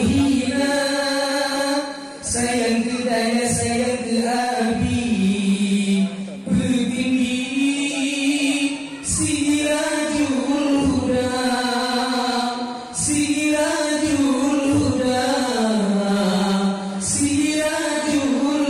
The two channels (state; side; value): identical; both; correlation 1.00